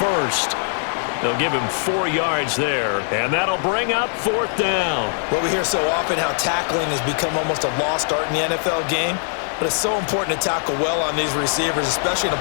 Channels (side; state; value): right; silent; 65 dB below the other